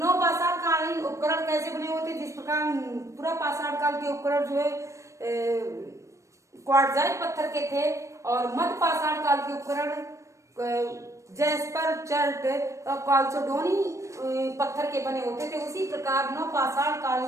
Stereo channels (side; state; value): left; late; 0.15 ms